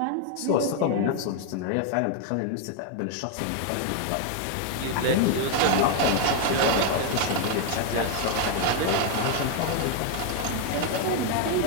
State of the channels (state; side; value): different; both; correlation 0.00